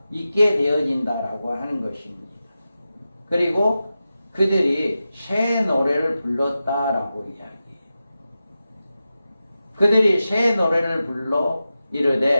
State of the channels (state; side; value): inverted; both; correlation -0.92